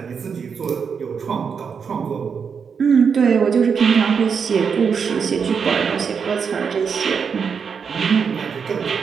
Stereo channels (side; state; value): left; quieter; 6.3 dB